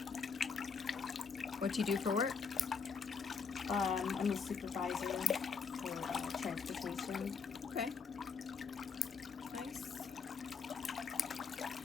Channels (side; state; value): right; quieter; 5.5 dB